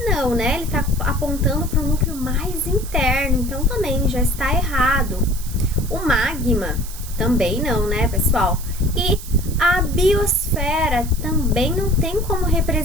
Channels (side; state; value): right; noise; hiss, 14 dB below the sound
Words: Não, né? Ele tá apontando para o núcleo mais interno, então também já está errado. O magma, também não, né, pessoal? E a biosfera também não tem como